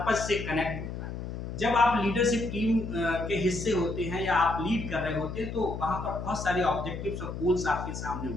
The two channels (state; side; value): noise; left; hum, 7 dB below the sound